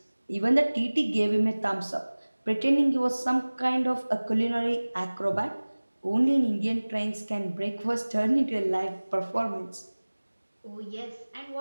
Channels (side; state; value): both; inverted; correlation -1.00